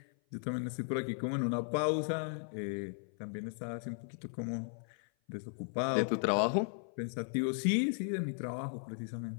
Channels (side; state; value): right; silent; 54 dB below the other